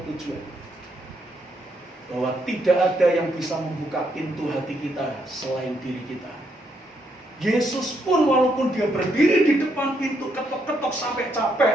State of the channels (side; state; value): both; normal; correlation 0.76